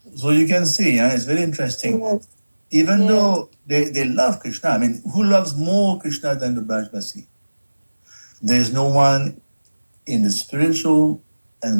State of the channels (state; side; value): inverted; both; correlation -1.00